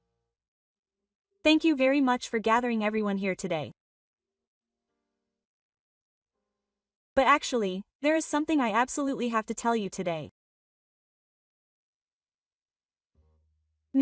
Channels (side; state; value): both; identical; correlation 1.00